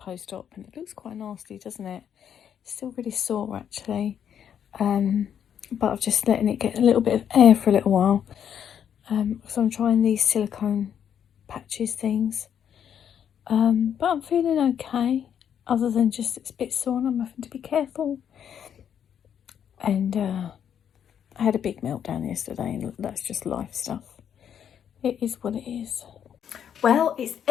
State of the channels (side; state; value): right; quieter; 8.7 dB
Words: and it looks quite nasty, doesn't it? It's still really sore actually, but I've just letting it get a little bit of air for a little while, so I'm trying these silicone patches things, but I'm feeling okay, other than just it's a bit sore and I'm having to be careful. And I had a big meltdown yesterday, and that's just life stuff. It is what it is. Well, it's